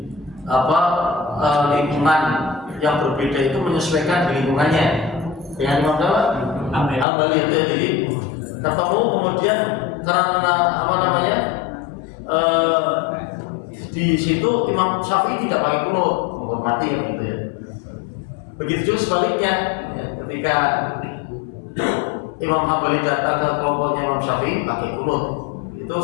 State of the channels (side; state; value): right; drops out; at 7.1 s